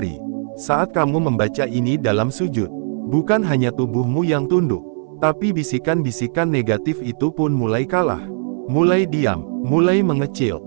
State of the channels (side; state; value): left; silent; 66 dB below the other